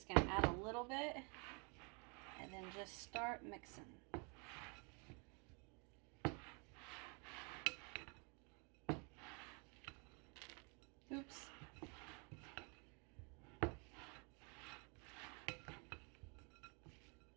going to add a little bit and then just start mixing. Oops.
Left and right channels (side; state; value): left; quieter; 34.0 dB